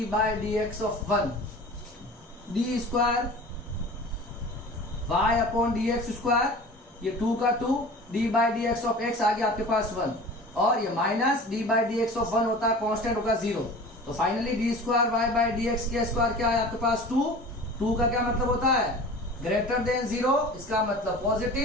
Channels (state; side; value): normal; both; correlation 0.39